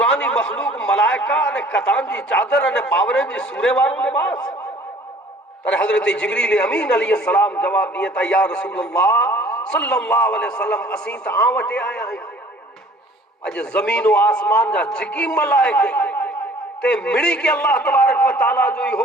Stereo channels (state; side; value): normal; both; correlation 0.52